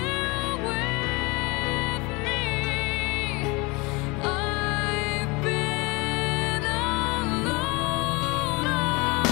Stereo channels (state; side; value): quieter; right; 25.9 dB